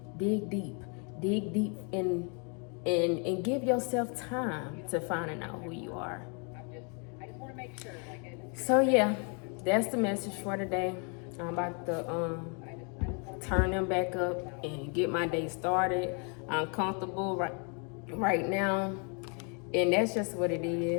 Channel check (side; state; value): right; quieter; 37.1 dB